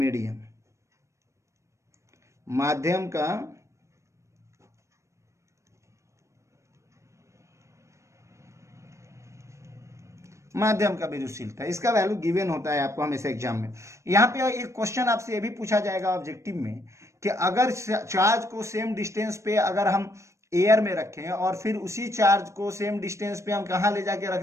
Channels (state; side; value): late; left; 0.14 ms